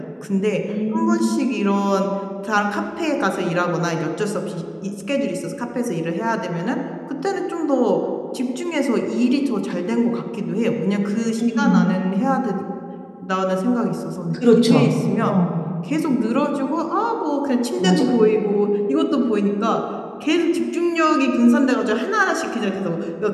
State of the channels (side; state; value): both; identical; correlation 1.00